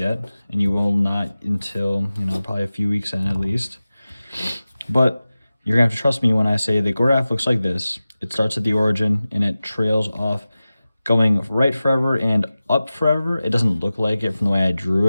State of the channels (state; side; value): inverted; both; correlation -0.96